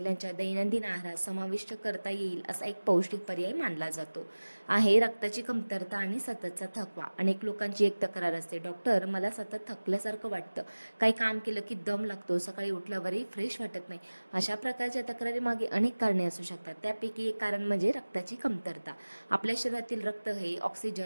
दैनंदिन आहारात समाविष्ट करता येईल असा एक पौष्टिक पर्याय मानला जातो. आहे रक्ताची कमतरता आणि सततचा थकवा. अनेक लोकांची एक तक्रार असते, डॉक्टर मला सतत थकल्यासारखं वाटतं, काही काम केलं की दम लागतो, सकाळी उठल्यावरही फ्रेश वाटत नाही. अशा प्रकारच्या तक्रारीमागे अनेक कारणे असू शकतात. त्यापैकी एक कारण म्हणजे रक्ताची कमतरता. आपल्या शरीरातील रक्त हे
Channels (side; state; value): both; inverted; correlation -1.00